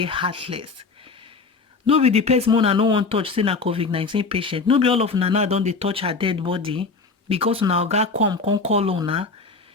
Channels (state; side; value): quieter; right; 4.3 dB